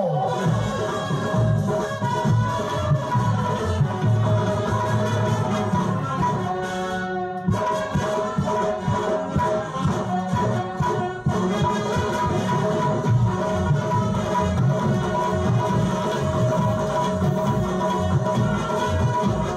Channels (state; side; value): identical; both; correlation 1.00